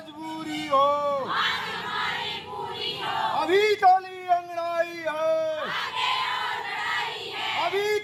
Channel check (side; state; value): both; identical; correlation 1.00